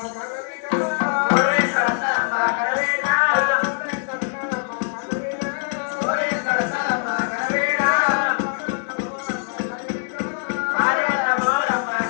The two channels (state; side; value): silent; right; digital silence